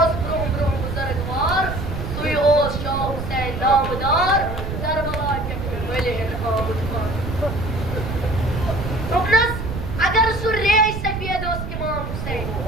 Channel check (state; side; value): noise; right; rumble, 5 dB below the sound